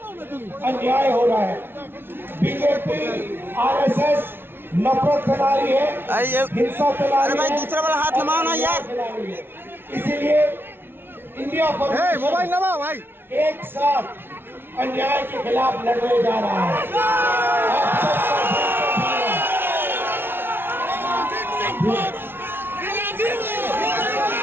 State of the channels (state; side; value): late; left; 0.11 ms